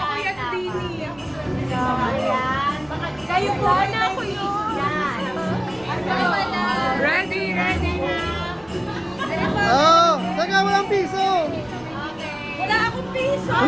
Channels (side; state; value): left; noise; rumble, 27 dB below the sound